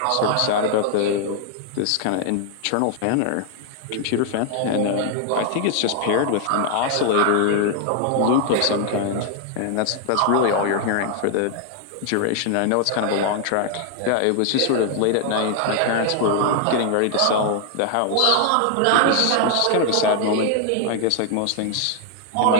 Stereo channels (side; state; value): both; different; correlation 0.00